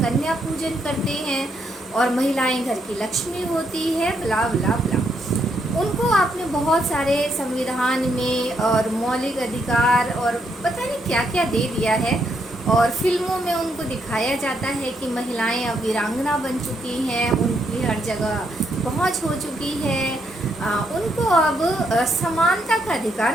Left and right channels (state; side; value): normal; both; correlation 0.76